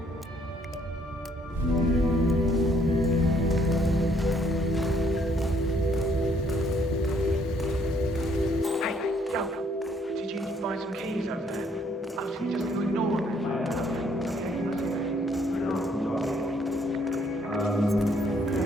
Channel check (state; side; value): normal; both; correlation 0.66